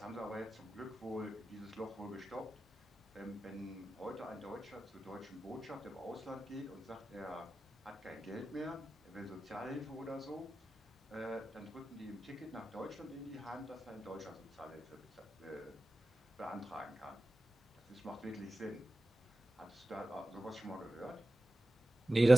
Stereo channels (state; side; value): normal; both; correlation 0.94